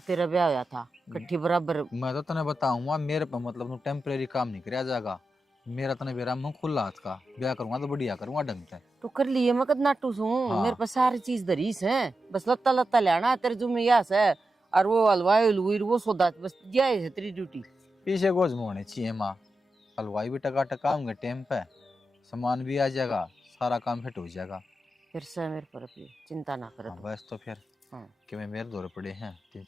तेरा ब्याह होया था, कट्ठी बराबर। मैं तो तने बताऊंगा, मेरे पे मतलब टेम्परेरी काम नहीं कराया जाएगा, मेरा तने बेरा मुंह खुला हाथ का, ब्याह करूंगा तो बढ़िया करूंगा ढंग से। तो कर लिए मैं कद नाटू सू, हाँ। मेरे पास सारी चीज दरीस है, बस लत्ता लत्ता लेना है तेरे जुम्मे यास है, और वो हलवाई हलवुई वो सौदा बस दिया है तेरी ड्यूटी। पीछे गोज में होने चाहिए माँ, हलवाई भी टका टका होंगे टाइम पे, सामान भी आ जाएगा, सारा काम फिट हो जाएगा। फिर से मेरे पर अपनी चिंता ना कर। हाँ बस तो फिर हाँ। कि मैं मेरे दौरे पड़े हैं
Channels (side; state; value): both; normal; correlation 0.90